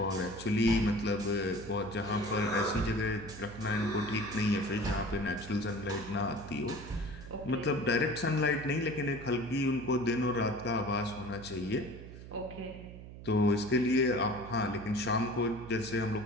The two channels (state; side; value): noise; right; hum, 14 dB below the sound